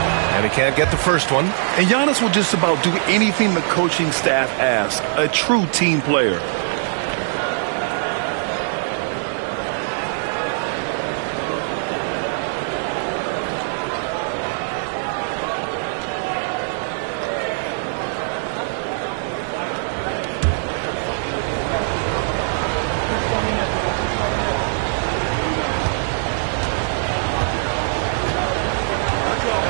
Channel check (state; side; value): silent; left; digital silence